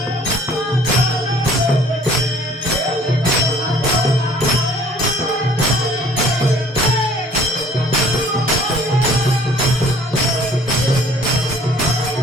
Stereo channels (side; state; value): both; normal; correlation 0.54